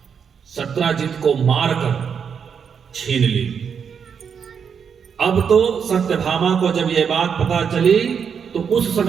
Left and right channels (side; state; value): left; quieter; 6.9 dB